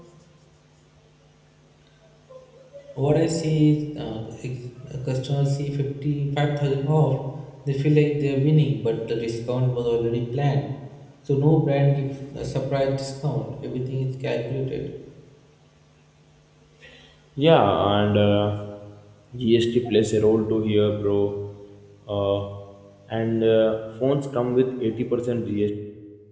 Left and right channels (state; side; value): identical; both; correlation 1.00